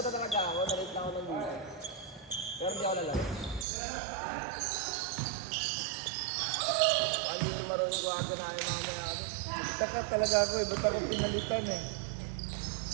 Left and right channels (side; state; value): left; drops out; at 3.7 s